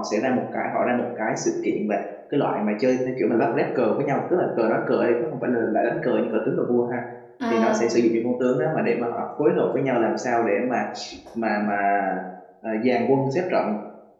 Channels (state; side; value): identical; both; correlation 1.00